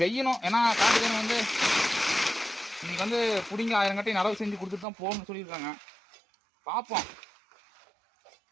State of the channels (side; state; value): left; drops out; at 4.9 s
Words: செய்யணும். ஏன்னா காட்டுக்காரன் வந்து இன்னைக்கு வந்து பிடிங்க 1000 கட்டை நடவு செஞ்சு கொடுத்துட்டு தான் போகணும்னு சொல்லியிருக்காங்க. பார்ப்போம்